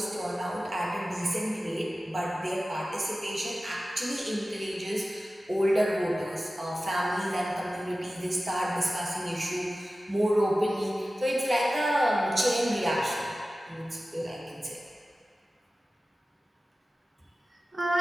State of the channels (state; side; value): normal; both; correlation 0.95